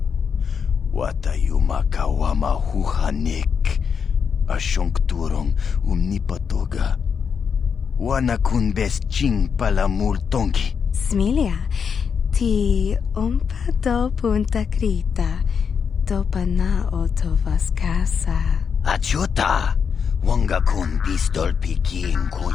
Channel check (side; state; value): right; quieter; 6.5 dB